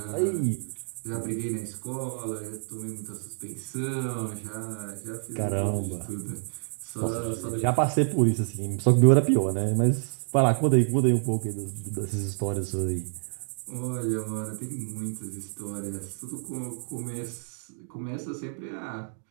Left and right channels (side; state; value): left; silent; digital silence